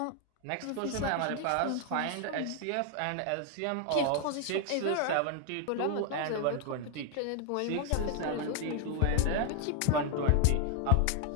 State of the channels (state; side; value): different; both; correlation 0.00